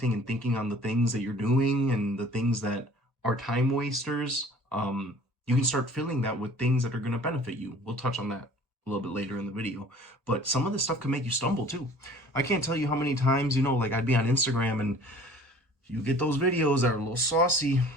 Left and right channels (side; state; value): both; normal; correlation 0.49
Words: and thinking on the things that you're doing and the things that are time wasters, you can start filling that with things that are going to benefit you. We'll touch on that a little bit later in the video, but some of this stuff can make you stumble too. I can't tell you how many times, like I'd be on Instagram and you get those videos that are a little saucy,